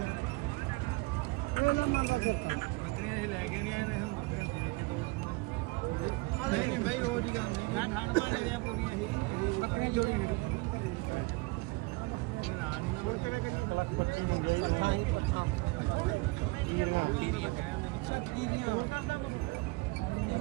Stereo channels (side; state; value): left; quieter; 25.0 dB